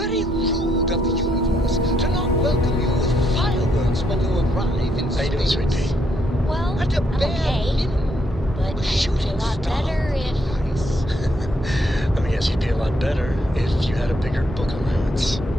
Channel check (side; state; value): both; normal; correlation 0.75